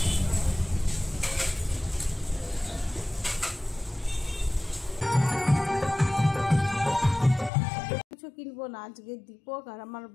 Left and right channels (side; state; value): right; drops out; at 7.5 s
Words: কিছু কিনবো না। আজকে দীপক আর আমার